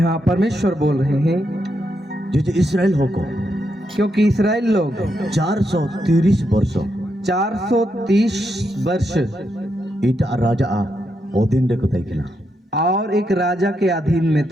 परमेश्वर बोल रहे हैं जो इस्राएल हो को क्योंकि इस्राएल लोग 430 वर्ष 430 वर्ष ईटा राजा ओदिन रे को तैकिना और एक राजा के अधीन में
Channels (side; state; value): both; normal; correlation 0.82